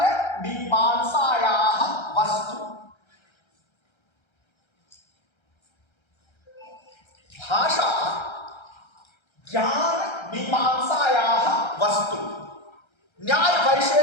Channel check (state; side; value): late; right; 1.3 ms